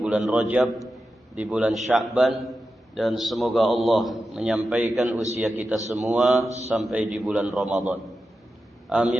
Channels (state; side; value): normal; both; correlation 0.91